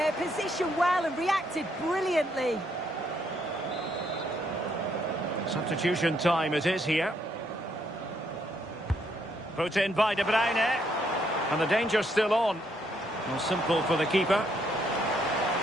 Positioned well and reacted brilliantly. Substitution time it is here. Put in by De Bruyne. And the danger's still on. Well, simple for the keeper.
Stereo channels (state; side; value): normal; both; correlation 0.73